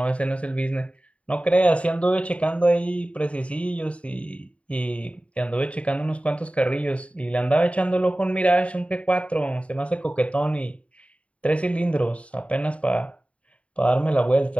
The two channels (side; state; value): right; late; 0.064 ms